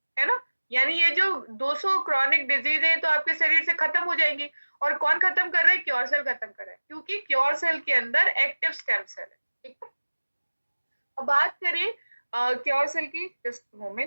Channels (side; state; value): both; inverted; correlation -1.00